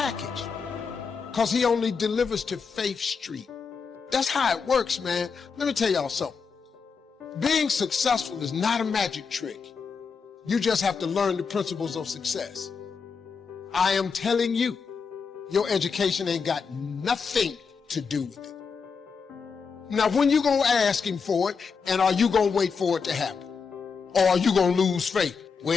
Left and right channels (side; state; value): right; quieter; 5.5 dB